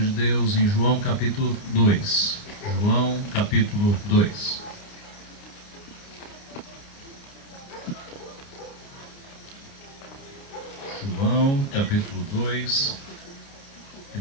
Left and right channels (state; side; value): late; right; 29 ms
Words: Deus em João capítulo 2. João capítulo 2. João capítulo 2. E